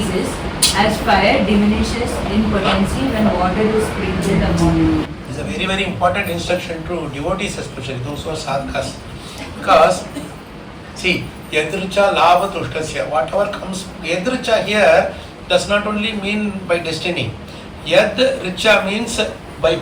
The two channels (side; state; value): both; identical; correlation 1.00